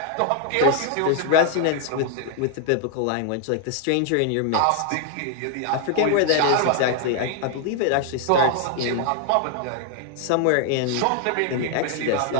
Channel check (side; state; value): both; different; correlation 0.00